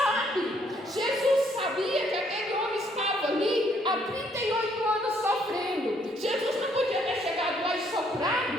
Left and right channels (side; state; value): both; normal; correlation 0.68